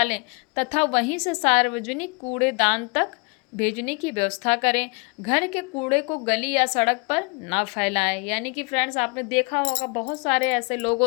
तथा वहीं से सार्वजनिक कूड़ेदान तक भेजने की व्यवस्था करें। घर के कूड़े को गली या सड़क पर ना फैलाएं, यानी कि फ्रेंड्स आपने देखा होगा बहुत सारे ऐसे लोग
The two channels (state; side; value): quieter; right; 31.1 dB